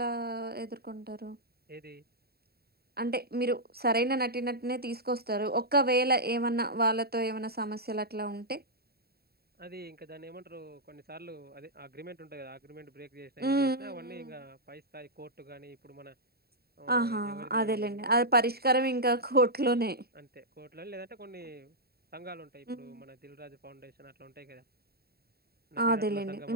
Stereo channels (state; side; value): late; left; 0.45 ms